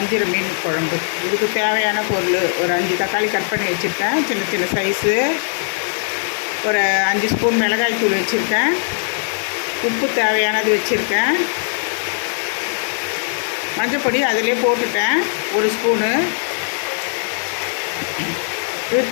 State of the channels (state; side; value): silent; right; digital silence